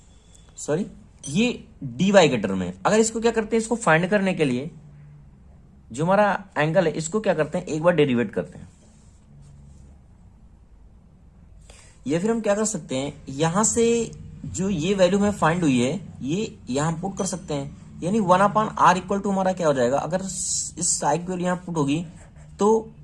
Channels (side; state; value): both; identical; correlation 1.00